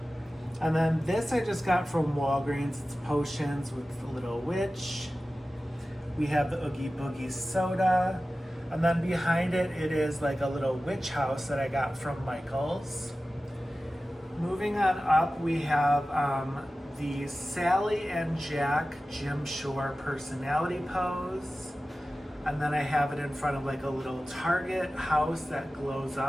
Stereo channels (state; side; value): normal; both; correlation 0.95